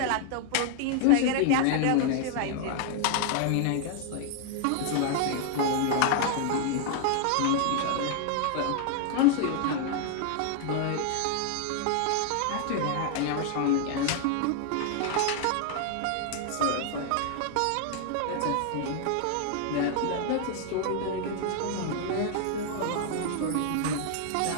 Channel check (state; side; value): different; both; correlation 0.00